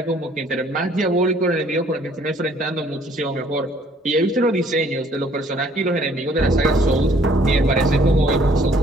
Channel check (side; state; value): both; normal; correlation 0.60